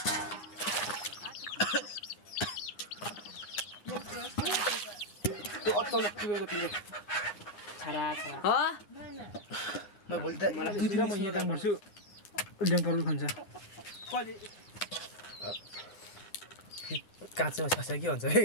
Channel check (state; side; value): late; right; 9.7 ms